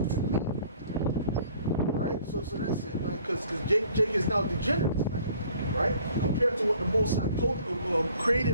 me? Right? So that's it, man. Because Jake is now degenerate, man. Right? Compared to what the Most High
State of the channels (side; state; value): both; inverted; correlation -0.56